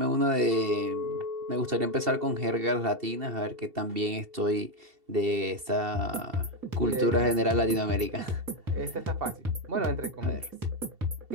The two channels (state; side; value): late; left; 2.7 ms